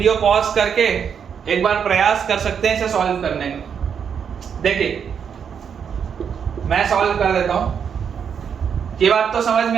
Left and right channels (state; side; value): quieter; left; 7.3 dB